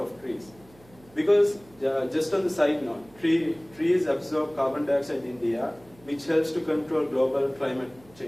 trees. Because just on the side note, trees absorb carbon dioxide in the air, which helps to control global climate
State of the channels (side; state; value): right; noise; hum, 26 dB below the sound